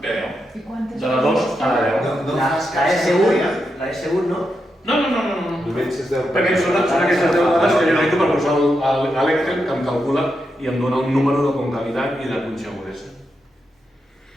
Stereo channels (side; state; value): both; normal; correlation 0.85